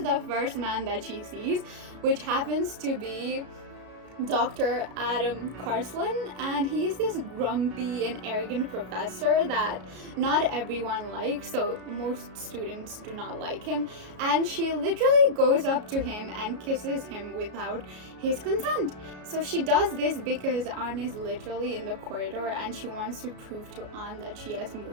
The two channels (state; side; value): late; left; 33 ms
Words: the first man that she sees, which happens to be Dr. Adam Carsland, and he is this grumpy and arrogant professor that not everyone likes, so most students do not like him, and she literally goes up to him and kisses him without his consent. So she does this because Anne is literally in the corridor and she wants to prove to Anne that she has